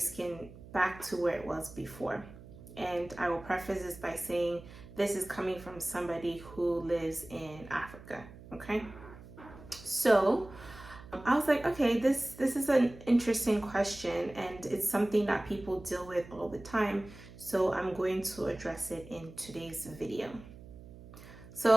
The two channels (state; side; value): noise; right; hum, 18 dB below the sound